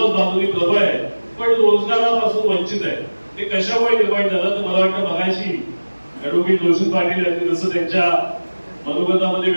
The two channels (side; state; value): both; inverted; correlation -1.00